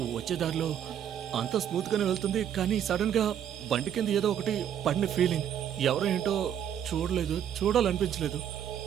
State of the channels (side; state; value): left; quieter; 9.6 dB